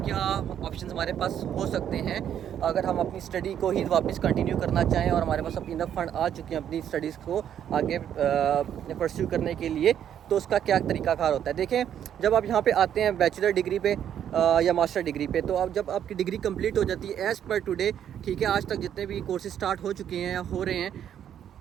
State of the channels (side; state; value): left; quieter; 9.7 dB